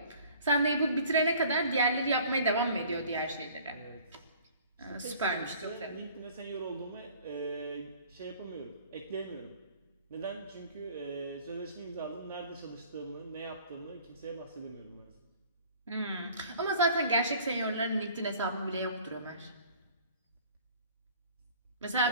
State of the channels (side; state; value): both; inverted; correlation -0.51